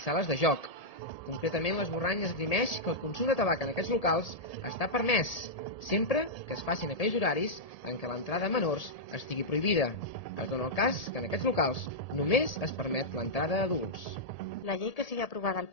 de joc. Concretament, l'esborrany esgrimeix que el consum de tabac en aquests locals està permès, sempre que es facin aquells horaris en què l'entrada a menors estigui prohibida. Es dona el cas que en aquests locals només es permet l'entrada a adults. La llei que sigui aprovada al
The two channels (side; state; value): right; late; 1.7 ms